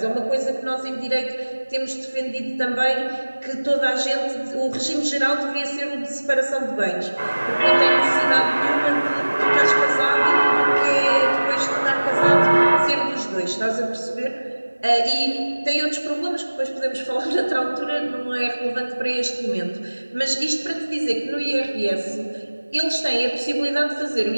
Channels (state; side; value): inverted; both; correlation -1.00